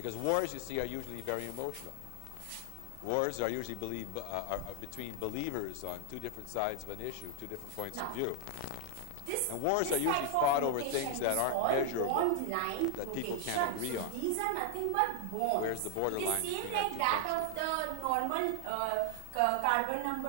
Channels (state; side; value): different; both; correlation 0.00